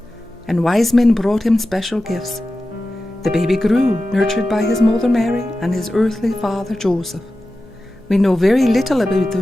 and wise men brought him special gifts. The baby grew, nurtured by his mother Mary and his earthly father Joseph. We know very little about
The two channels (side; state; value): left; noise; hum, 25 dB below the sound